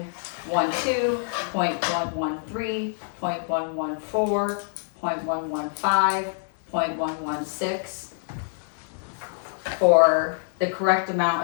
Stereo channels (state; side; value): silent; right; digital silence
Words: .113, .114, .115, .116, for the correct